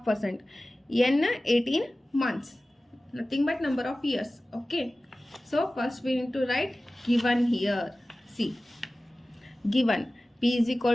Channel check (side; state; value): both; normal; correlation 0.97